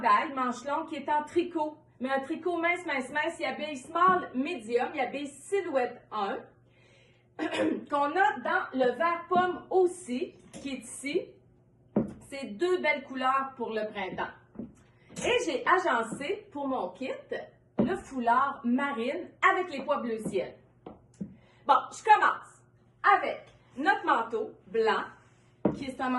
manche longue qui est en tricot, mais un tricot mince. Il habille small, medium, il habille silhouette 1, qu'on a dans le vert pomme aussi, qui est ici. C'est deux belles couleurs pour le printemps. Et j'ai agencé pour mon kit le foulard marine avec les pois bleu ciel. Bon, je commence avec notre manteau blanc, qui est un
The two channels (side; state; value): both; identical; correlation 1.00